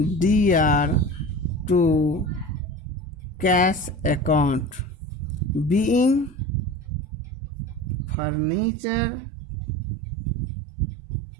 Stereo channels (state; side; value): drops out; left; at 8.2 s